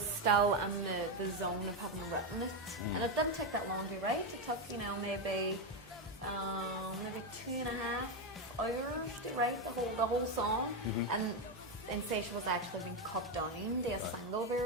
in the zone of having written it, and it didn't take that long to write. It took, maybe 2.5 hours to write the whole song, and Insatiable was actually being cut down to a single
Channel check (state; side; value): noise; right; hum, 24 dB below the sound